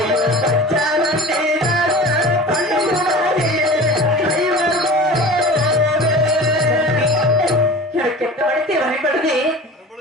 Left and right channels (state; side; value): normal; both; correlation 0.37